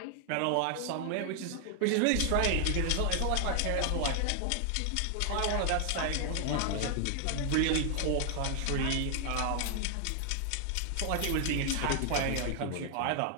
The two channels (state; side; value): different; both; correlation 0.00